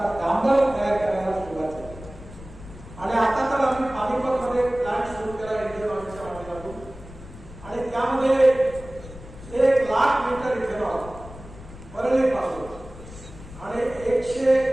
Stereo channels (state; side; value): noise; left; rumble, 16 dB below the sound